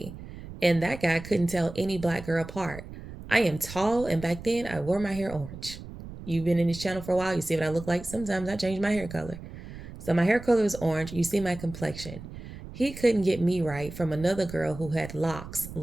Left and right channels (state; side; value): noise; right; rumble, 13 dB below the sound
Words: And that guy couldn't tell any black girl apart. I am tall, and back then I wore my hair orange. You've been in this channel for a while. You see what I look like. Sometimes I change my hair color. So my hair color is orange. You see my complexion. He couldn't get me right from another girl who had locks,